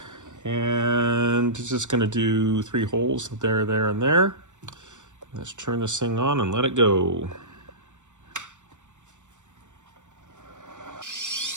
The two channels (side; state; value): left; late; 0.85 ms